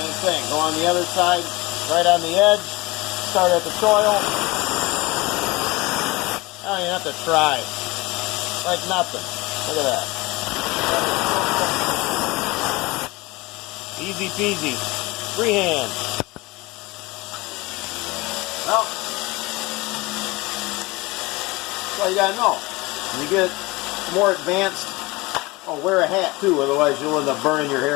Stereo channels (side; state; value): right; quieter; 22.8 dB